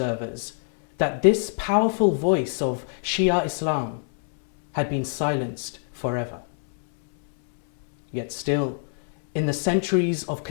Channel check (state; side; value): silent; right; 62 dB below the other